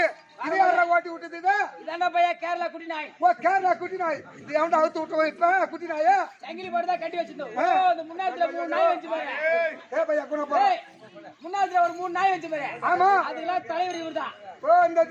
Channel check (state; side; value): identical; both; correlation 1.00